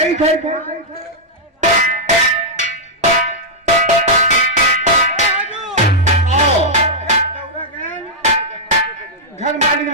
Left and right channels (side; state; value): both; normal; correlation -0.07